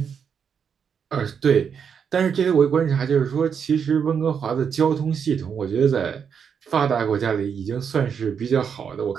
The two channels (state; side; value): quieter; left; 7.1 dB